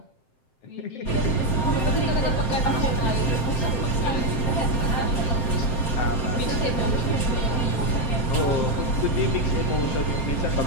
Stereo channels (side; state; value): right; late; 7.7 ms